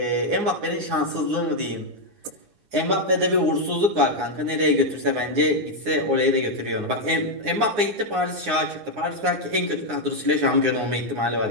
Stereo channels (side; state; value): left; late; 9.6 ms